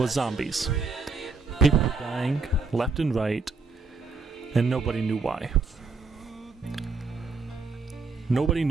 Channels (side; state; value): left; quieter; 4.1 dB